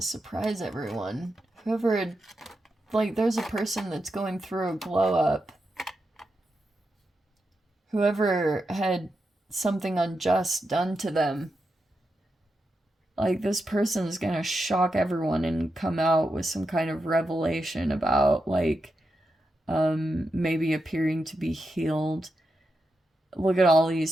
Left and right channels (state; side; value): normal; both; correlation 0.87